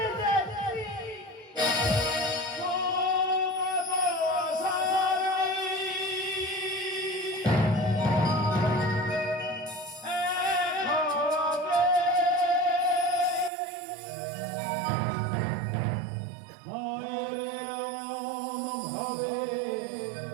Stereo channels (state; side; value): drops out; left; at 13.5 s